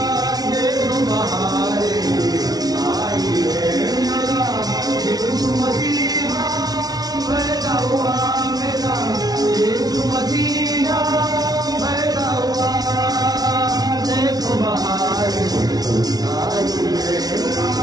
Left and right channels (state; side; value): late; left; 0.19 ms